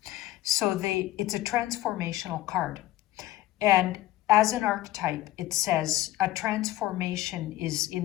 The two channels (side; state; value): right; quieter; 15.5 dB